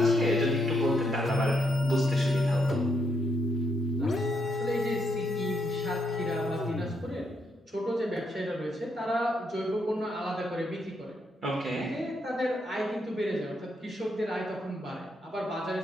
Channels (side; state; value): both; normal; correlation 0.78